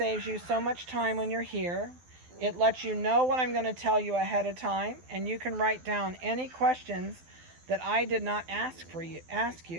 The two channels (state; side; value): late; left; 12 ms